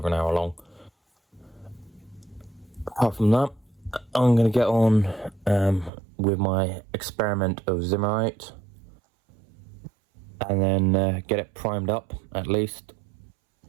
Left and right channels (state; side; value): drops out; left; at 5.9 s